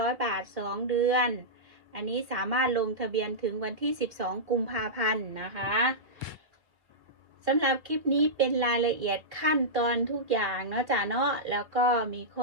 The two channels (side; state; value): left; late; 2.3 ms